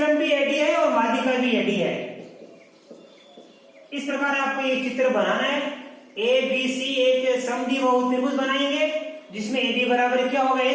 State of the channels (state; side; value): identical; both; correlation 1.00